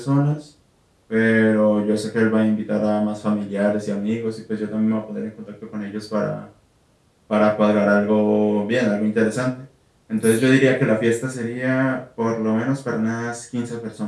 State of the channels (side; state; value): both; identical; correlation 1.00